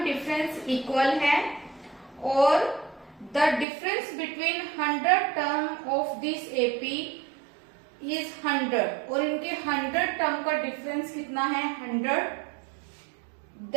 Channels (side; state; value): left; drops out; at 3.7 s